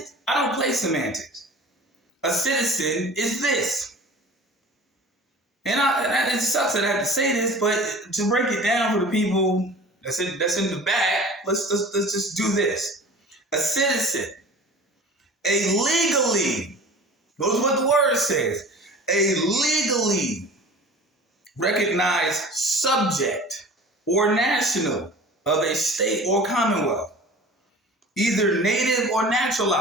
I don't play semantics. A citizen is this. And it sucks that I have to say this, but to break it down for the people that's in the back, let's just do this. A citizen, a legally, notice what the word says, a legally recognized subject or national of a state or commonwealth, either native or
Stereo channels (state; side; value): normal; both; correlation 0.41